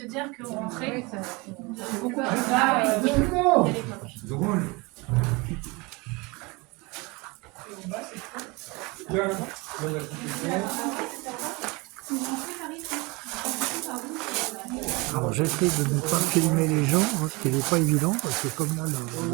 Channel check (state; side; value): quieter; left; 26.1 dB